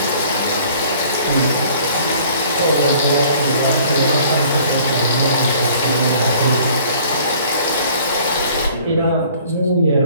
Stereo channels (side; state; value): both; inverted; correlation -0.54